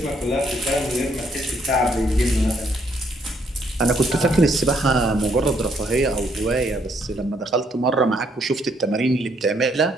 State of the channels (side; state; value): both; normal; correlation 0.70